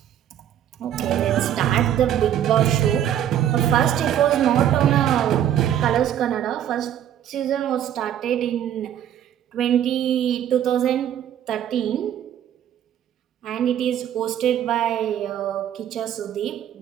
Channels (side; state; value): left; quieter; 10.5 dB